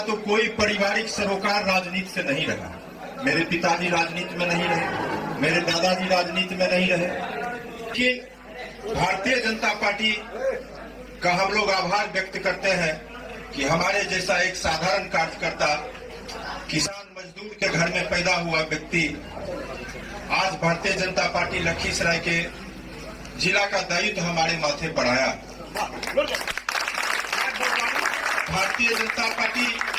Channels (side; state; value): both; identical; correlation 1.00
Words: कोई पारिवारिक सरोकार राजनीति से नहीं रहा। मेरे पिताजी राजनीति में नहीं रहे, मेरे दादाजी राजनीति में नहीं रहे। कि भारतीय जनता पार्टी का हम लोग आभार व्यक्त करते हैं कि हमारे जैसा एक साधारण कार्यकर्ता, किसान मजदूर के घर में पैदा हुआ व्यक्ति आज भारतीय जनता पार्टी लखीसराय के जिला का दायित्व हमारे माथे पर आया। भारतीय जनता पार्टी